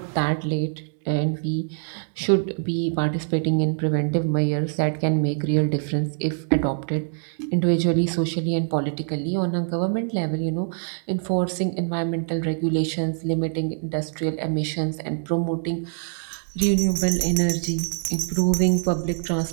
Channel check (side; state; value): left; silent; digital silence